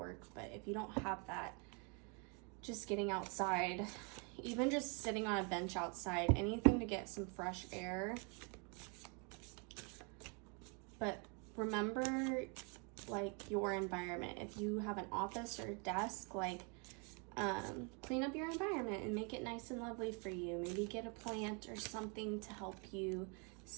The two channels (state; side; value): quieter; left; 35.1 dB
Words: But if you don't have that, just getting outside, even just sitting on a bench outside, anything to get some fresh air. But remember, like, your environment. If you have an office or a desk, like, clean up your environment and make it nice and lovely for you. Maybe get a plant or something to help you